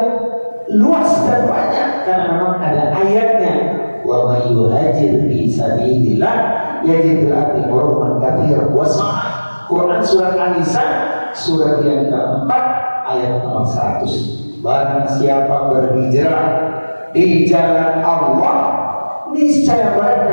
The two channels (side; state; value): both; inverted; correlation -1.00